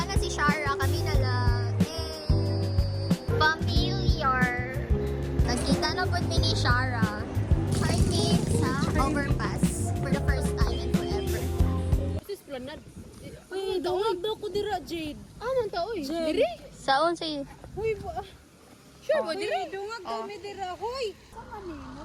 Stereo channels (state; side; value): identical; both; correlation 1.00